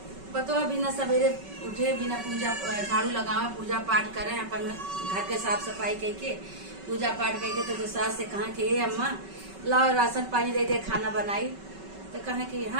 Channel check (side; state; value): left; late; 5.3 ms